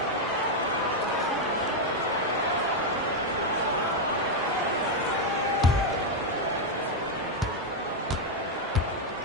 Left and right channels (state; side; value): normal; both; correlation 0.02